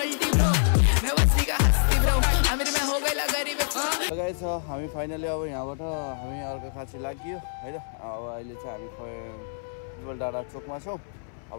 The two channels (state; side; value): silent; right; 59 dB below the other